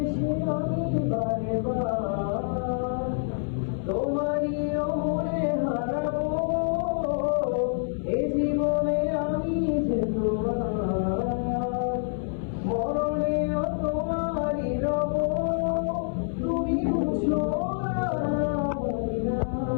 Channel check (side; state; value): right; silent; 60 dB below the other